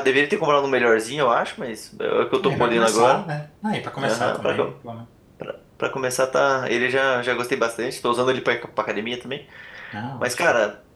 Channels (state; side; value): identical; both; correlation 1.00